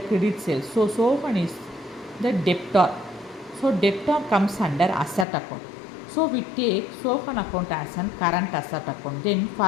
credit sale. So Sohan is the debtor. So debtor comes under asset account. So we take Sohan account as an current asset account. Then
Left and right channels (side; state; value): right; drops out; at 5.2 s